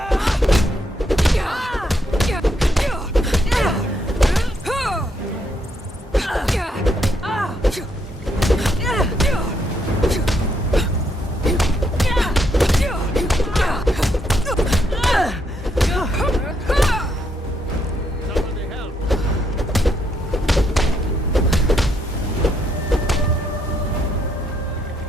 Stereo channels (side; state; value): both; normal; correlation 0.75